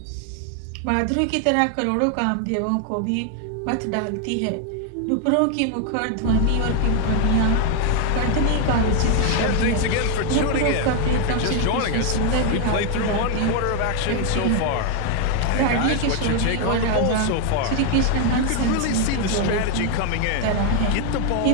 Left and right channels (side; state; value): both; different; correlation 0.01